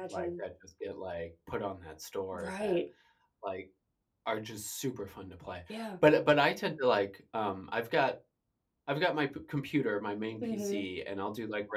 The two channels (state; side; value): identical; both; correlation 1.00